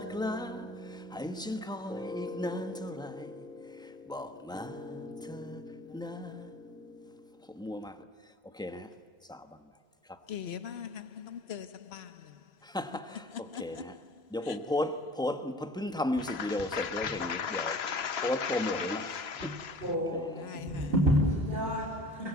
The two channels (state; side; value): normal; both; correlation 0.47